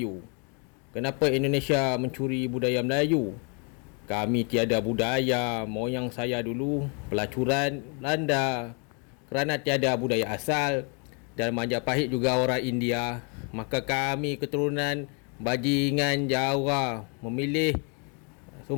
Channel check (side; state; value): right; quieter; 36.8 dB